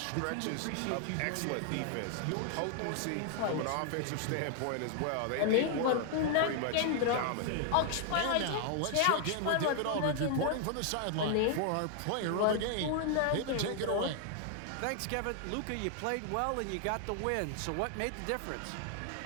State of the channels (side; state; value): both; different; correlation 0.00